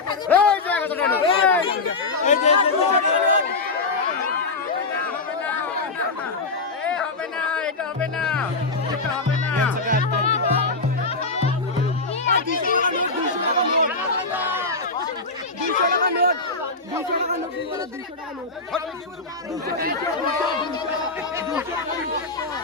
এই জায়গা তো কেন এই হবে না এটা হবে না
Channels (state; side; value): quieter; right; 3.7 dB